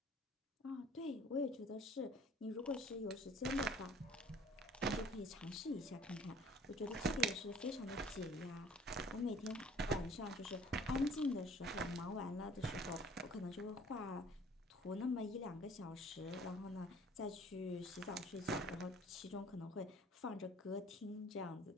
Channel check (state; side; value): normal; both; correlation 0.52